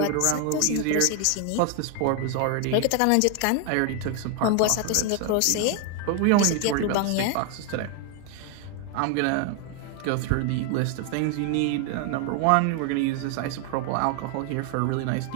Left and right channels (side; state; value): both; different; correlation 0.00